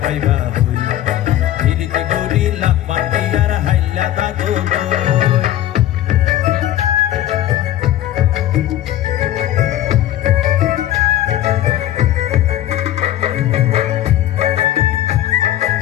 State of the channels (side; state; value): right; quieter; 13.1 dB